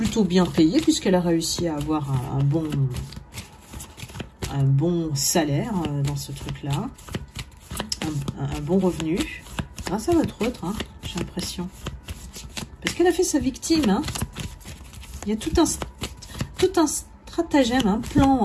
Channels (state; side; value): identical; both; correlation 1.00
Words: bien payée, puisqu'elle a réussi à avoir un bon salaire dans ce truc-là, un bon revenu, grâce à votre autre, hein, j'ai l'impression. Parce qu'elle a fait sa victime, hein. Il y a tout un stratagème, un